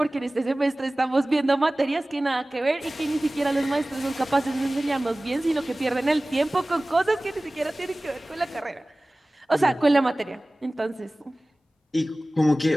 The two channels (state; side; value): normal; both; correlation 0.98